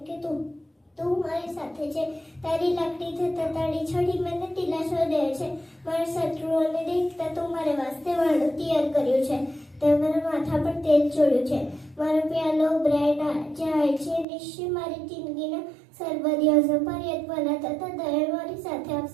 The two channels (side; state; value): left; drops out; at 14.2 s